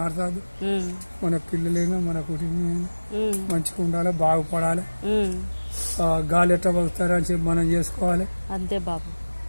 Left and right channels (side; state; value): both; inverted; correlation -1.00